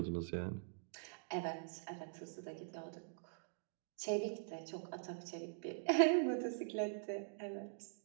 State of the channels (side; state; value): left; silent; digital silence